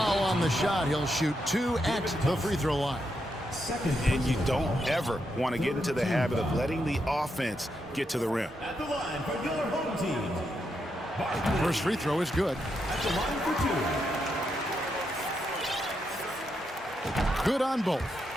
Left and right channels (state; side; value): normal; both; correlation 0.82